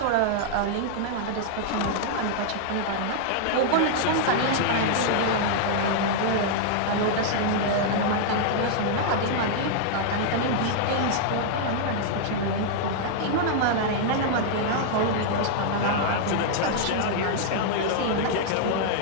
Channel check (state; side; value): different; both; correlation -0.01